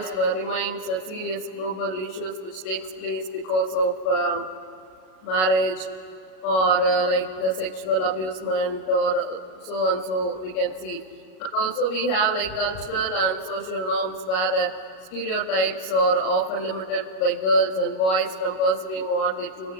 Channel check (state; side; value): late; right; 38 ms